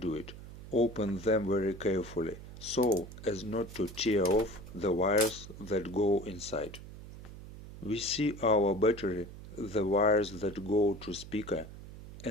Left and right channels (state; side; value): noise; right; hum, 14 dB below the sound